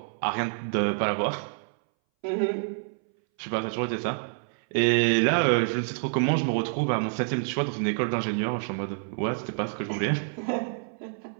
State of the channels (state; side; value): silent; left; 60 dB below the other